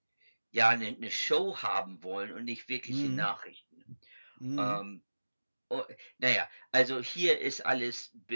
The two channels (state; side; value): inverted; both; correlation -1.00